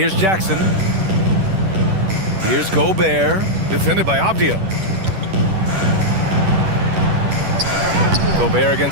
Jackson. Here's Gobert, defended by Avdia. Gobert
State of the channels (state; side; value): late; left; 10 ms